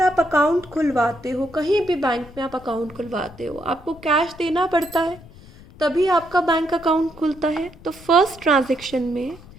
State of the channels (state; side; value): noise; left; rumble, 21 dB below the sound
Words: आप अकाउंट खुलवाते हो, कहीं भी बैंक में आप अकाउंट खुलवाते हो, आपको कैश देना पड़ता है तभी आपका बैंक अकाउंट खुलता है। तो फर्स्ट ट्रांजैक्शन में